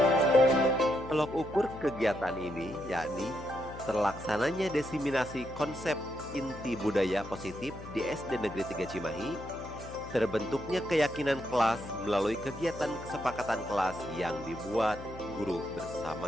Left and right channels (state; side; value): noise; left; hum, 13 dB below the sound